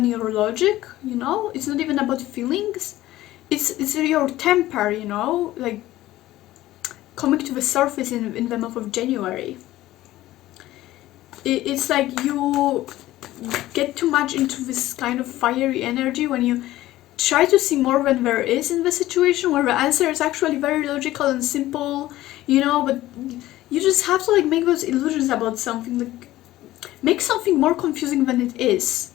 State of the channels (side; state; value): right; quieter; 15.7 dB